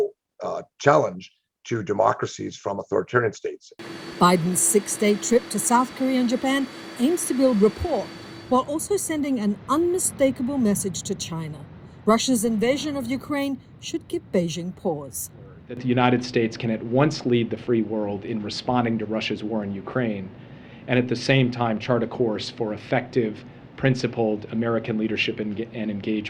challenge to democracies from authoritarian states. Biden's 6-day trip to South Korea and Japan aims to build rapport while also sending an unmistakable message to China. Russia's invasion of Ukraine should give Beijing pause. That the United States can at once lead the free world in responding to Russia's war in Ukraine, and at the same time chart a course for effective, principled American leadership and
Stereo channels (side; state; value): both; identical; correlation 1.00